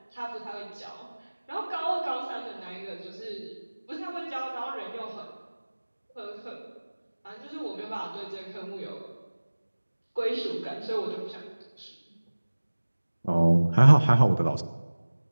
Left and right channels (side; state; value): both; inverted; correlation -1.00